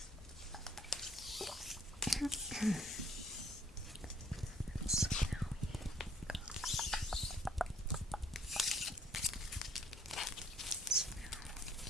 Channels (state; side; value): normal; both; correlation 0.62